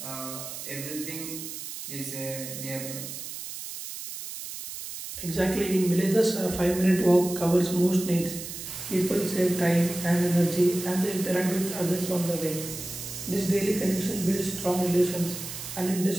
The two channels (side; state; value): right; noise; hiss, 9 dB below the sound